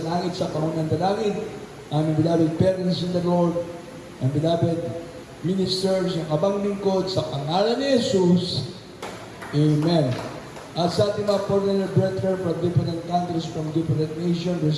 langit, sa pangunang dalangin. Aming beloved parents in the Lord, ang beloved ministers, yung kabang lingkod, sa pangalan ni Jesus. Amen. At sa ating mga foreigner brethren from different countries, from different nations,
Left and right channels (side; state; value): both; identical; correlation 1.00